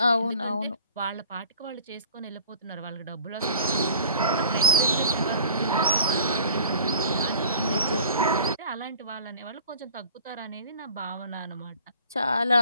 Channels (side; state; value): both; inverted; correlation -0.49